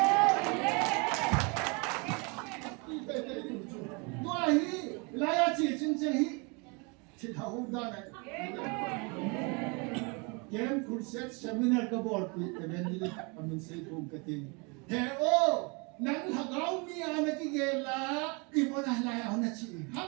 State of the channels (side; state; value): left; quieter; 31.0 dB